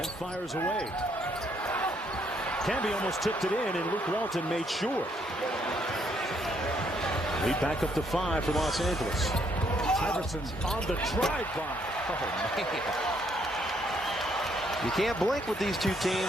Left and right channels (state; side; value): normal; both; correlation 0.70